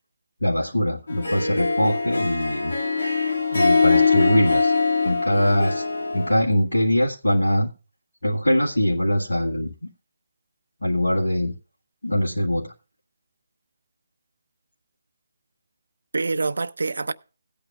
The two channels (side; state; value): both; inverted; correlation -0.94